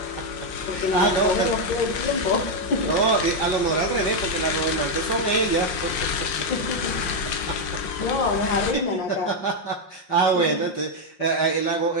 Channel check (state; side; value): late; right; 5.6 ms